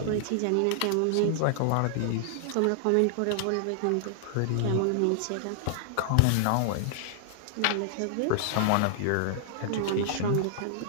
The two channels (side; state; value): both; different; correlation -0.01